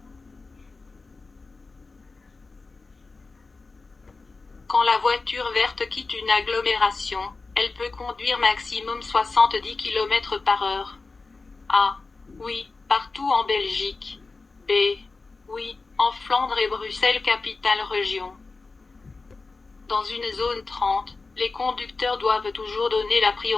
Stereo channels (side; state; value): right; quieter; 3.9 dB